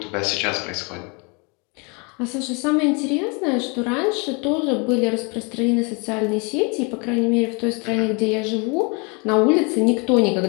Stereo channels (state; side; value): quieter; right; 31.5 dB